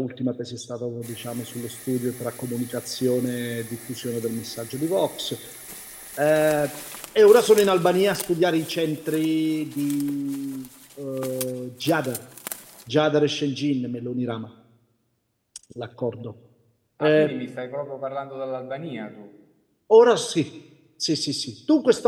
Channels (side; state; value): both; identical; correlation 1.00